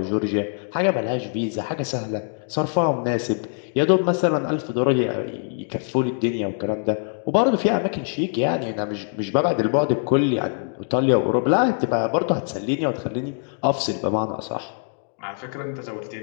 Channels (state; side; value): silent; right; 57 dB below the other